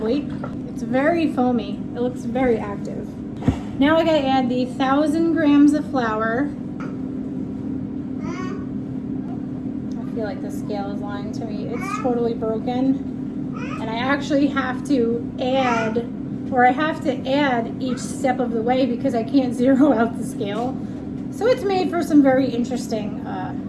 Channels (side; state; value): both; identical; correlation 1.00